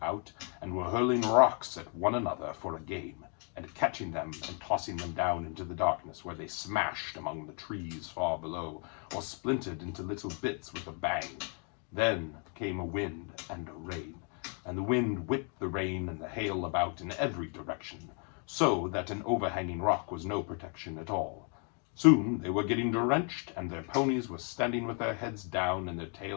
out and were hurling rocks at one another for a game, and catching them and tossing them down into the darkness, where they smashed among the trees far below, or splintered into little bits with a bang. Then came a wind and a rain, and the wind whipped the rain and the hail about in every direction, so that an overhanging rock was no protection at all. Soon they were getting drenched, and their ponies were standing with their heads down and their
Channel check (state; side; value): quieter; right; 39.2 dB